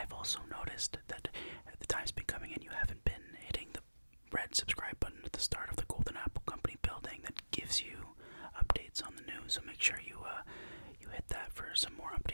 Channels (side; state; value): both; inverted; correlation -1.00